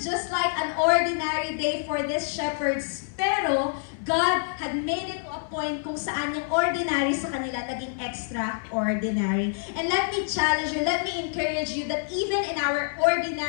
just like an ordinary day for these shepherds. Pero, God had made it to a point kung saan yung ordinary sa kanila naging extraordinary. And let me challenge you, let me encourage you that even in our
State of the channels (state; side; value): silent; right; 59 dB below the other